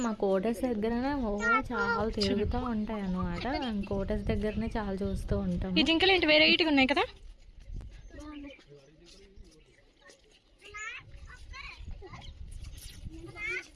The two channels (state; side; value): identical; both; correlation 1.00